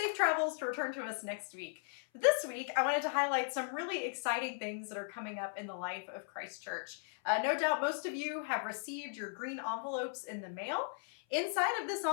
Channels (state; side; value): silent; right; 53 dB below the other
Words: travels to return to us next week. But this week, I wanted to highlight some really exciting things that are coming up in the life of Christ Church. No doubt most of you have received your green envelopes in the mail. Inside of this